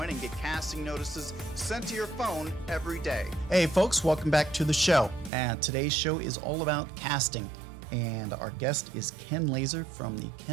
and get casting notices sent to your phone every day. Hey folks, welcome back to the show. And today's show is all about casting. And our guest is Ken Lazer from the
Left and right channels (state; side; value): drops out; left; at 5.3 s